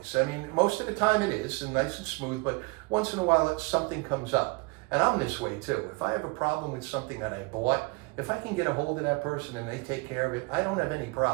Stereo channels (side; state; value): left; quieter; 27.4 dB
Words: I mean, most of the time it is, and nice and smooth, but once in a while something comes up. And I'm this way too. If I have a problem with something that I bought, if I can get a hold of that person and they take care of it, I don't have any